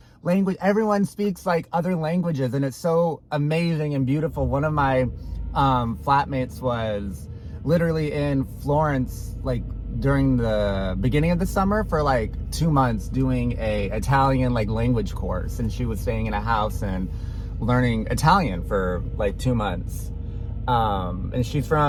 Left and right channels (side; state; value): both; identical; correlation 1.00